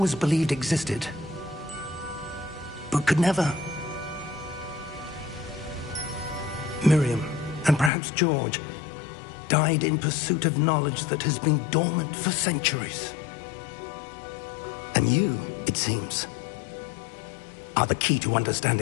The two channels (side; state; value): right; drops out; at 7.9 s